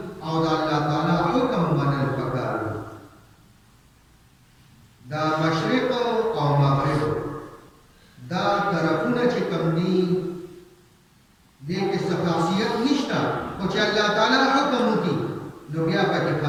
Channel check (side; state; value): both; identical; correlation 1.00